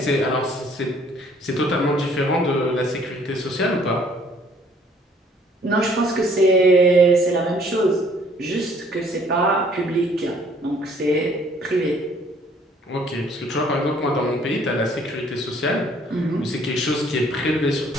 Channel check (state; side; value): normal; both; correlation 0.60